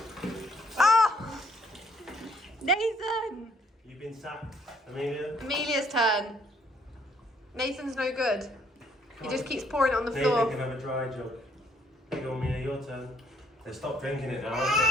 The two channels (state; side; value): normal; both; correlation 0.67